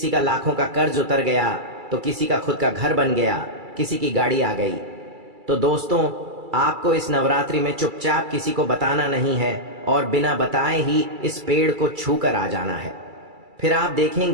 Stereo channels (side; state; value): left; late; 2.3 ms